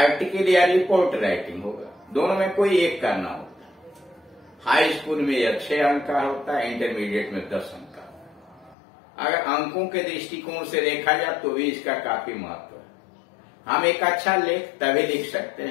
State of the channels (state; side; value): drops out; right; at 8.8 s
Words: या रिपोर्ट राइटिंग होगा। दोनों में कोई एक करना होता है। हाई स्कूल में यह 6 अंक का होता है, इंटरमीडिएट में 10 अंक का। अगर अंकों के दृष्टिकोण से देखा जाए तो भी इसका काफी महत्व है। हम एक अच्छा लेख तभी लिख सकते